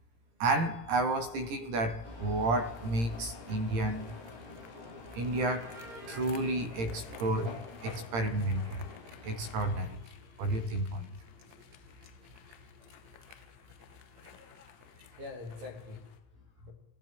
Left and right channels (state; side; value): late; left; 17 ms